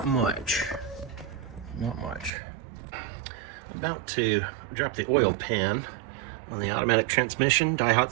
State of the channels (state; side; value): drops out; left; at 2.3 s